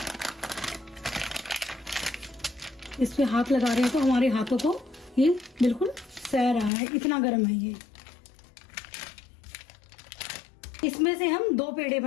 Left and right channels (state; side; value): drops out; right; at 6.7 s